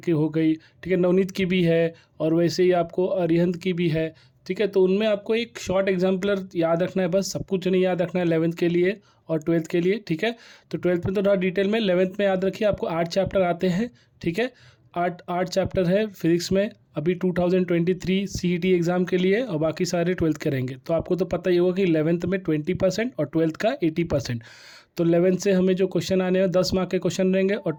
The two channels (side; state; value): both; identical; correlation 1.00